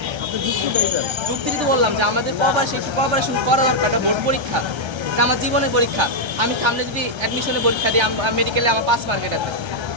যুক্তি তো বললাম যে আমাদের কোঅপারেশন করা দরকার, একটা বোর্ড পরীক্ষা, এটা আমার জীবনের পরীক্ষা। আমি সামনে যদি অ্যাডমিশনের পরীক্ষা দিই, মেডিকেলে আমার 5 মার্ক, এটা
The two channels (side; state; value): left; late; 1.3 ms